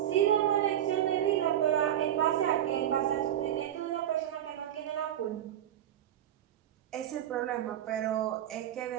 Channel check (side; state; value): left; quieter; 11.1 dB